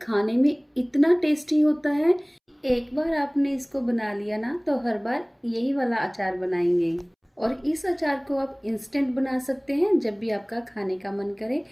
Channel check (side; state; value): both; identical; correlation 1.00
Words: खाने में इतना टेस्टी होता है। एक बार आपने इसको बना लिया ना तो हर बार यही वाला अचार बनाएंगे। और इस अचार को आप इंस्टेंट बना सकते हैं जब भी आपका खाने का मन करे,